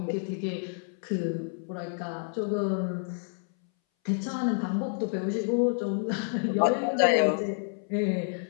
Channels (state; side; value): silent; right; 59 dB below the other